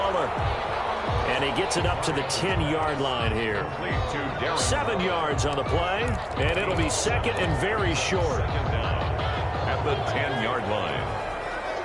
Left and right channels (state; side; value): identical; both; correlation 1.00